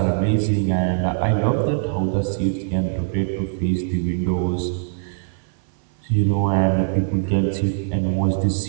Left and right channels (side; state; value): left; silent; 58 dB below the other